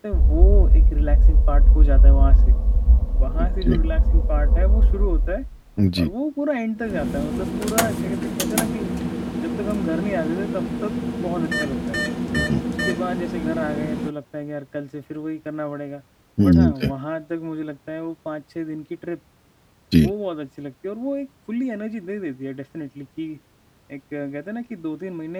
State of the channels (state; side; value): identical; both; correlation 1.00